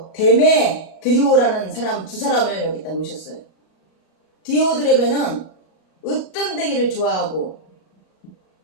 데메드리오라는 사람 두 사람을 여기다 놓으셨어요. 디오드레베는 으뜸되기를 좋아하고,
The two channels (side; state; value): right; late; 38 ms